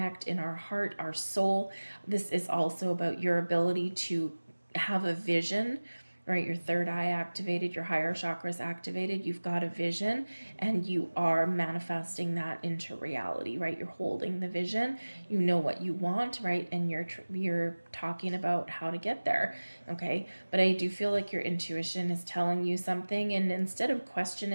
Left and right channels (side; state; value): both; inverted; correlation -1.00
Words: in our heart, our soul. This is also about your ability to have a vision, right? Your third eye activated, your higher chakras activated. You've got a vision and you are manifesting that into reality, right? You're holding the vision, you know what you want, right? And you're talking about how to get there, okay? But I do feel like your intuition is telling you something, and instead of